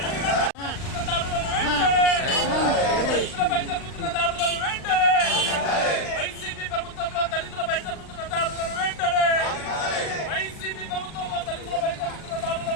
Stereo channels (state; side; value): late; right; 39 ms